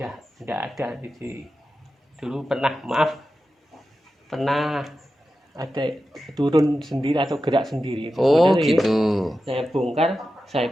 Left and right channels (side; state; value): both; normal; correlation 0.92